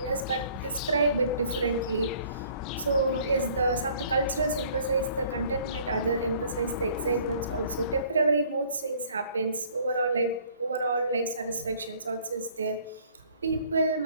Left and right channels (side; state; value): both; inverted; correlation -0.56